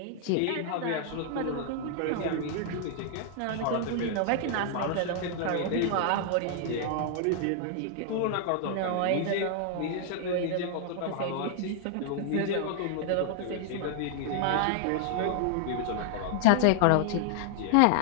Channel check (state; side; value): different; both; correlation -0.01